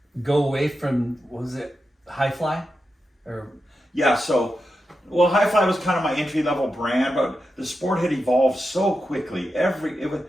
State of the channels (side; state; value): both; normal; correlation 0.89